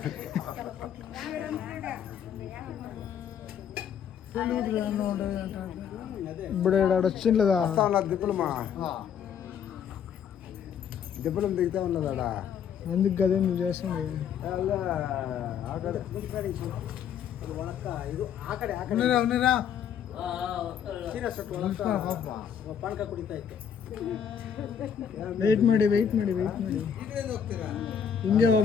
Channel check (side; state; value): right; quieter; 8.1 dB